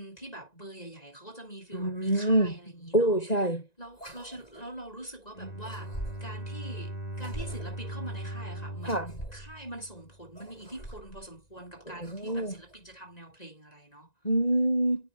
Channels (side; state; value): right; late; 1.9 ms